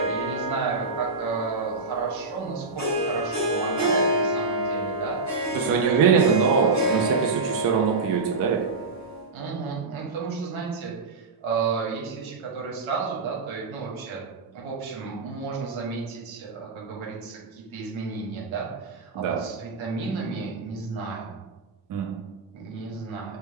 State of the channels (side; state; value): left; quieter; 4.0 dB